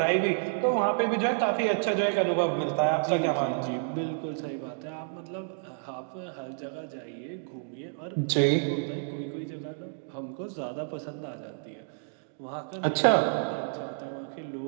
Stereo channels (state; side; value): silent; left; digital silence